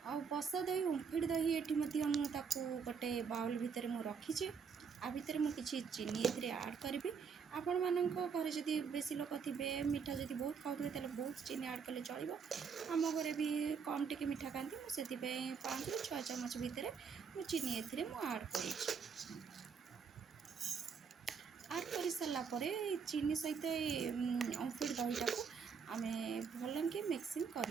आ बसा दही ओमफेड दही ये गोटे बाउल भितर मुझे रखी आ भितर मुझे चीनी ए आड करी आपण मान घर जदि बेसी लोक थे मीठा जब बहुत खाऊे तो बहुत चीनी आड कले चलो। आम घरे भी कम टी मीठा खाती मुझे 5 ରୁ 6 ଚାମଚ भितर मुझे चीनी ए आड कर सारापर चीनी सहित ओमफेड दहीटा को आम भल कि मिक्सिंग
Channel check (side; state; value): left; quieter; 6.1 dB